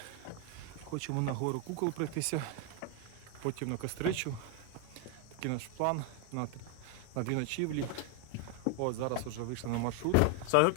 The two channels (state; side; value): different; both; correlation 0.01